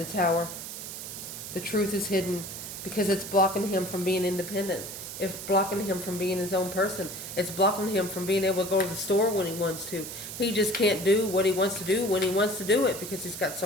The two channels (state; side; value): noise; right; hiss, 9 dB below the sound